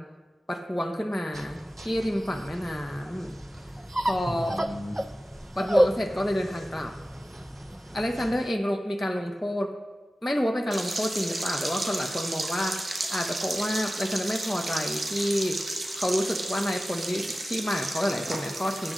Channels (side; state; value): both; normal; correlation 0.95